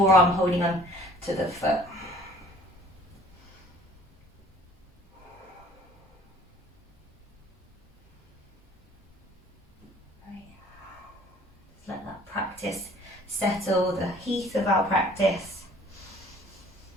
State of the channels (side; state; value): both; normal; correlation 0.53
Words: holding on to the foot. Just let that practice settle the heat of our practice.